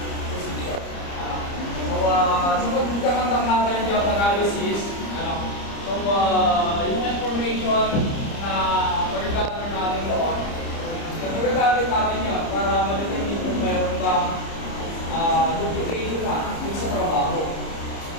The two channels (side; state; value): right; late; 30 ms